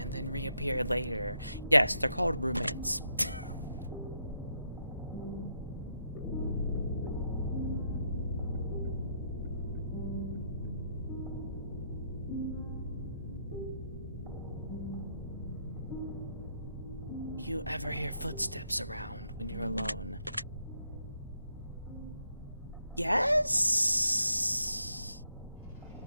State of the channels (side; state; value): both; inverted; correlation -0.77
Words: then reappear later? Yes, they're called roommates. Do you ever hear footsteps around when you're alone? Yes?